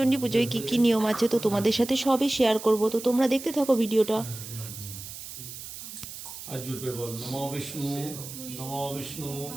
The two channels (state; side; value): noise; right; hiss, 11 dB below the sound